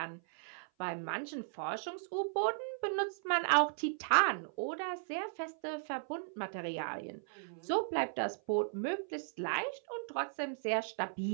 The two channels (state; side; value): silent; left; 53 dB below the other